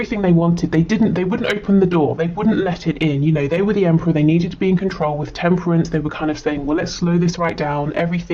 they wanted, they wouldn't open the door, they wouldn't let it in. They were the Emperor, they needed to be in control. With Temperance, they were kind of saying, well, let's slow this right down,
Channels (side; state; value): both; identical; correlation 1.00